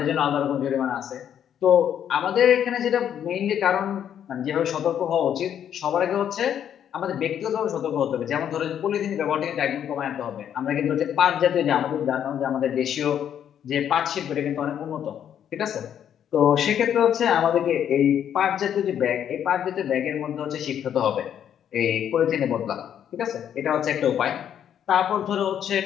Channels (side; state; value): right; quieter; 9.5 dB